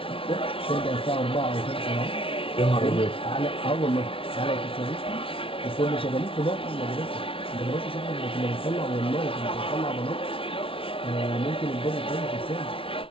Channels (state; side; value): late; right; 0.26 ms